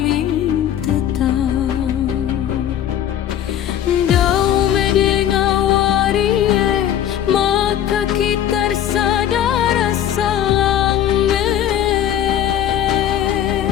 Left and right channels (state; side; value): quieter; right; 10.6 dB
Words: ing tetang dau medengawari maka kita sadar salang